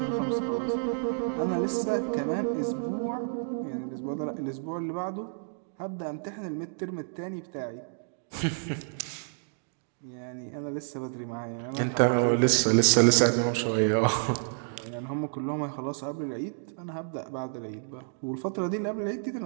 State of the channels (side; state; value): left; silent; digital silence